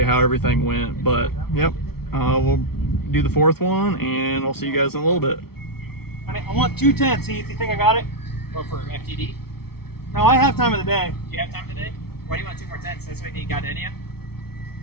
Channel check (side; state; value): right; late; 0.95 ms